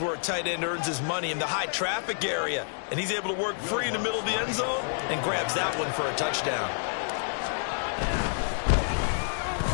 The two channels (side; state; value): right; silent; digital silence